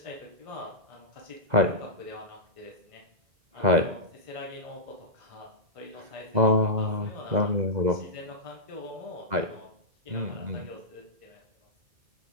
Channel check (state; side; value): late; left; 2.0 ms